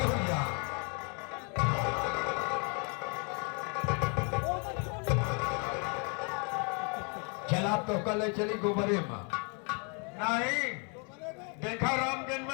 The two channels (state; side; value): quieter; right; 36.6 dB